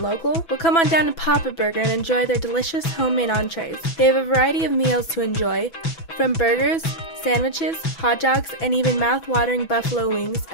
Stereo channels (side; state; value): right; late; 6.0 ms